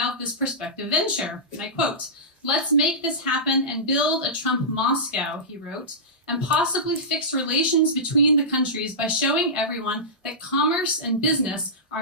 this prospective venture, and I quote, "Let's make this happen and build a Trump Moscow," he wrote, "and possibly fix relations between the countries by showing everyone that commerce and business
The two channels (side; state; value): both; normal; correlation -0.16